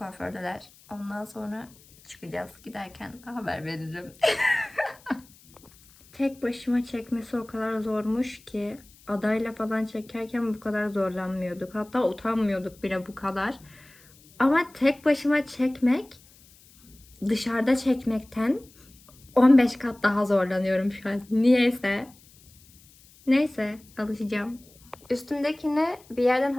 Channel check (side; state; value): left; noise; hiss, 26 dB below the sound